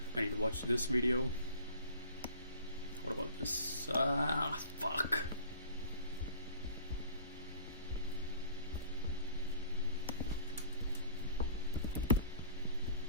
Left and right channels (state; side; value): inverted; both; correlation -0.49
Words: this video. What about this? Fuck.